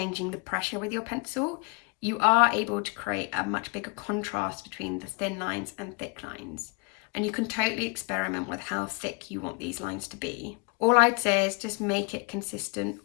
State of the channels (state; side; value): quieter; right; 31.8 dB